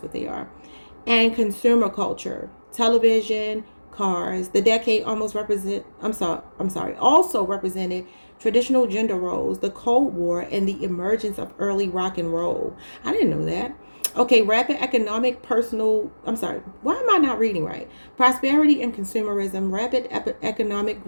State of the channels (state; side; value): inverted; both; correlation -1.00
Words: what they are, and consumer culture, television, cars. The decade also represented traditional gender roles, the Cold War, and the emergence of early rock and roll. I didn't know that. Okay, rapid economic why am I not reading right? Prosperity and consumerism. Rapid economic